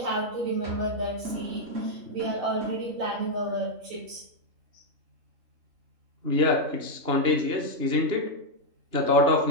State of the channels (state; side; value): late; left; 2.9 ms